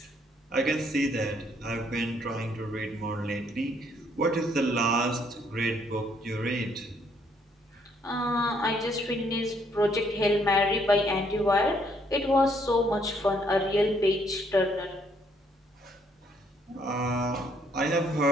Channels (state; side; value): normal; both; correlation 0.68